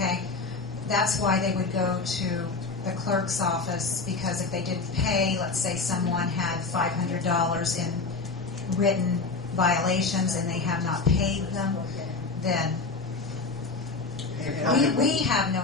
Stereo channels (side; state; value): right; quieter; 4.0 dB